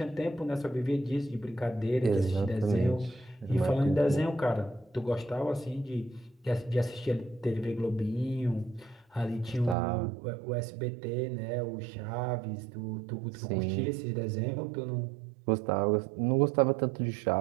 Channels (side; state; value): left; drops out; at 9.8 s